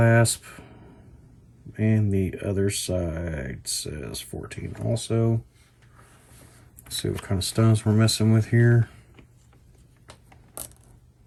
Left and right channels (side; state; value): both; identical; correlation 1.00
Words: And the other side says 14 also. Let's see what kind of stones we're messing with here.